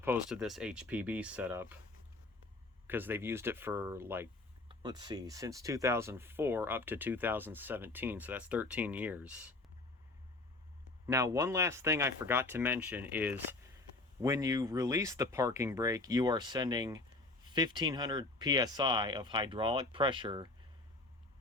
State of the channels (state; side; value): quieter; right; 3.1 dB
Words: to this HPB setup, because they've used it for, since 2004 up to 2017, so that's 13 years. Now, one last thing I forgot to mention is when you release the parking brake, you are sending 1500 psi of hydraulic pressure